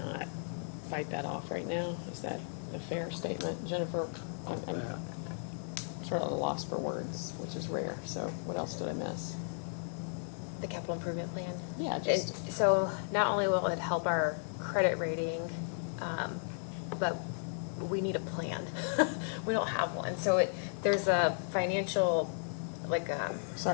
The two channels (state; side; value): silent; right; 54 dB below the other